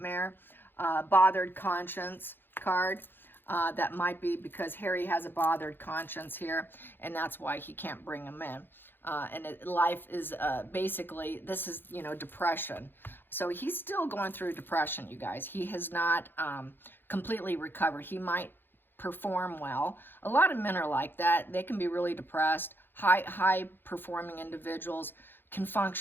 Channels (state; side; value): late; right; 0.10 ms